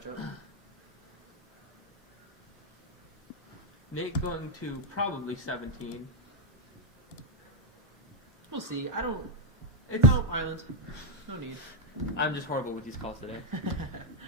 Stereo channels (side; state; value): both; normal; correlation -0.01